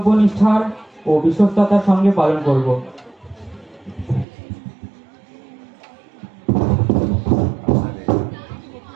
ও বিশ্বস্ততার সঙ্গে পালন করব।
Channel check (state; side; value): drops out; left; at 4.2 s